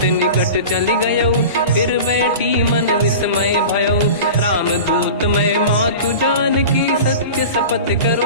निकट चली गयो फिर बैठी मन विस्मय भयो राम दूत मैं मातु जान की सत्य शपथ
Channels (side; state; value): both; inverted; correlation -0.34